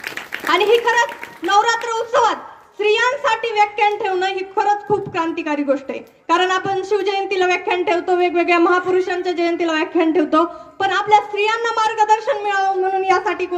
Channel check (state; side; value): identical; both; correlation 1.00